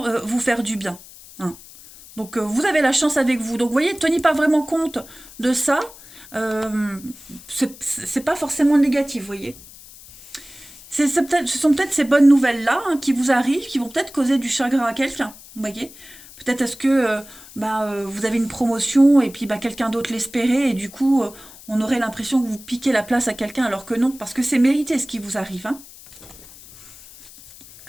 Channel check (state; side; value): noise; left; hiss, 19 dB below the sound